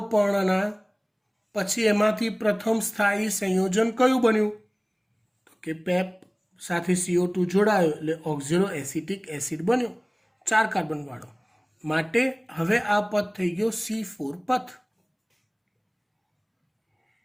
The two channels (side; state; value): both; identical; correlation 1.00